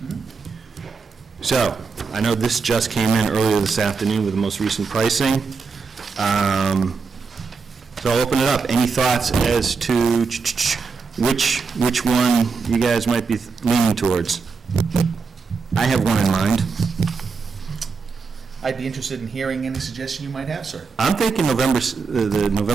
So, I know this just came in earlier this afternoon with the most recent pricing. So I'll open it up. Any thoughts as to which one you guys might be leaning towards? I have one in mind. I'd be interested in hearing any suggestion you might have, sir. I'm thinking the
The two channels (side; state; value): left; quieter; 4.9 dB